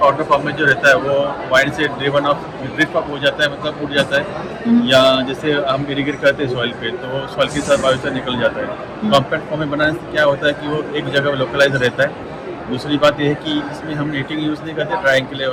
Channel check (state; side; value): identical; both; correlation 1.00